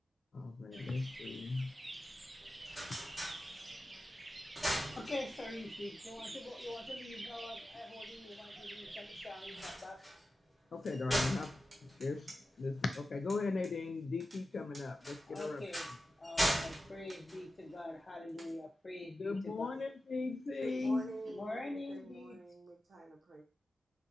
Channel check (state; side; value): normal; both; correlation 0.93